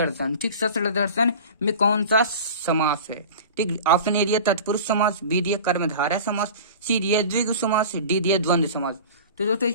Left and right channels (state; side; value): inverted; both; correlation -0.37